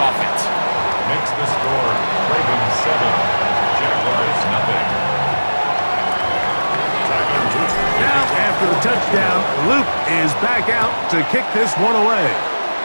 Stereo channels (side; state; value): both; inverted; correlation -1.00